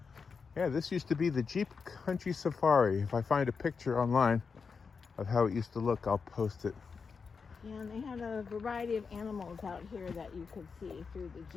Yeah, this used to be the Jeep Country Safari. If I find a picture online of how it used to look, I'll post it. Yeah, and they had a variety of animals out here that you could see through the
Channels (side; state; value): right; quieter; 5.4 dB